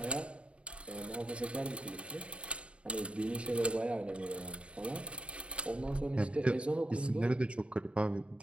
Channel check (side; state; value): left; late; 0.059 ms